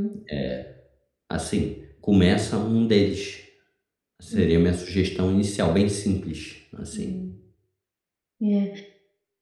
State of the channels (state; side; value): identical; both; correlation 1.00